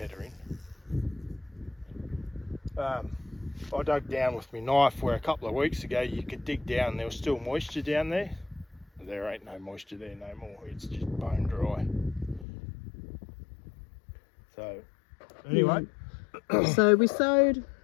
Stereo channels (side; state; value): right; drops out; at 12.5 s